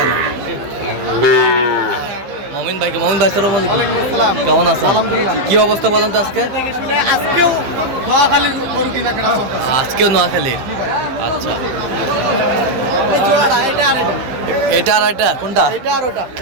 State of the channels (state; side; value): late; left; 15 ms